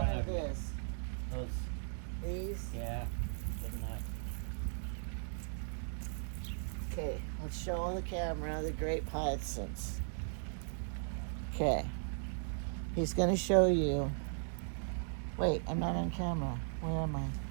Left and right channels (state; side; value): silent; left; 53 dB below the other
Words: or of you. this? Those, These? yeah, good enough. Okay, let's show the camera the grape hyacinths. Okay. He's going to show you. Wait, I'm not on camera. Where am